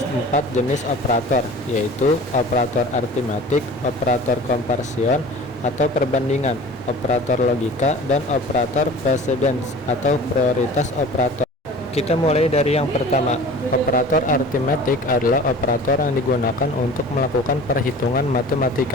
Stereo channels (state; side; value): normal; both; correlation 0.41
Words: 4 jenis operator, yaitu operator aritmatik, operator komparsion atau perbandingan, operator logika, dan operator precedence atau prioritas operator. Kita mulai dari yang pertama. Operator aritmatik adalah operator yang digunakan untuk melakukan perhitungan